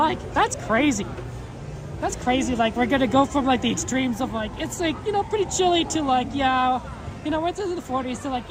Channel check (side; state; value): both; identical; correlation 1.00